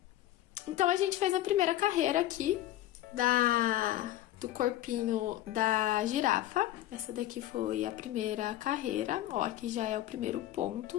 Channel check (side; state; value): right; quieter; 14.1 dB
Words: Então, a gente fez a primeira carreira aqui do corpinho da girafa. Essa daqui foi a primeira carreira. Ó, aqui já é o primeiro